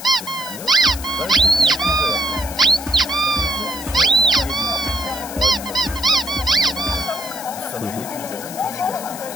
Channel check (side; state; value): left; noise; hiss, 12 dB below the sound